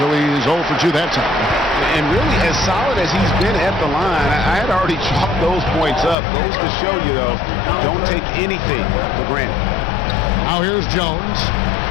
so he's 0 for 2 that time. And really, as solid as he's been at the line, I had already chalked those points up. Goes to show you, though, don't take anything for granted. Now here's Jones.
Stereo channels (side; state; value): right; drops out; at 6.2 s